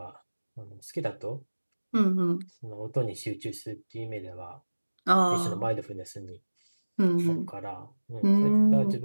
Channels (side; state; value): both; inverted; correlation -1.00